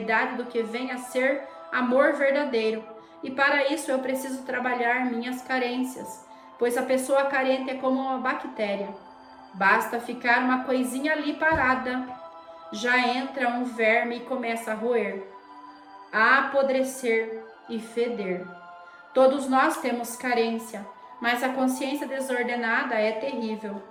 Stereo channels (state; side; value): identical; both; correlation 1.00